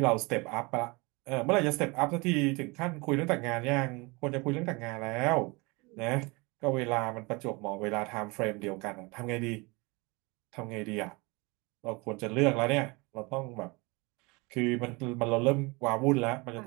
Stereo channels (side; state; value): left; quieter; 26.5 dB